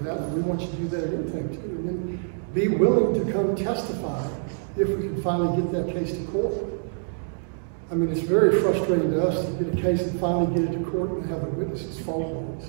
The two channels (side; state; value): left; silent; digital silence